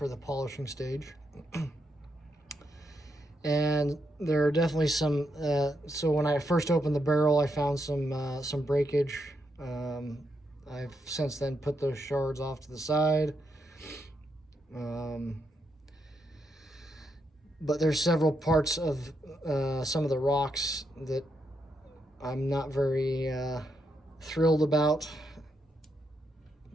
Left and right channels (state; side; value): normal; both; correlation 0.81